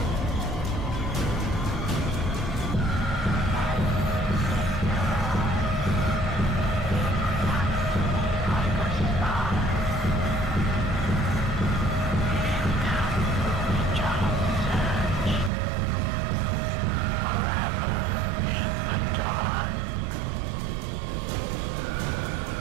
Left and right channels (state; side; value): drops out; left; at 15.5 s